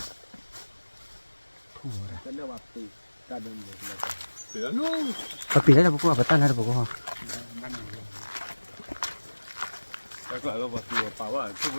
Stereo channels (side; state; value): both; inverted; correlation -1.00